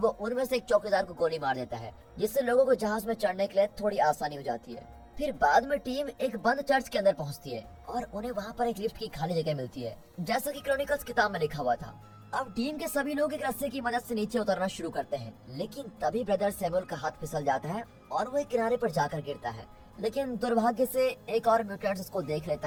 उनमें से एक चौकीदार को गोली मार देता है, जिससे लोगों को जहाज में चढ़ने के लिए थोड़ी आसानी हो जाती है। फिर बाद में टीम एक बंद चर्च के अंदर पहुंचती है और उन्हें वहां पर एक लिफ्ट की खाली जगह मिलती है, जैसा कि क्रॉनिकल्स किताब में लिखा हुआ था। अब टीम के सभी लोग एक रस्से की मदद से नीचे उतरना शुरू करते हैं, लेकिन तभी ब्रदर सैमुअल का हाथ फिसल जाता है और वो एक किनारे पर जाकर गिरता है। लेकिन दुर्भाग्य से एक और म्यूटेंट उसको देख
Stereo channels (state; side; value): identical; both; correlation 1.00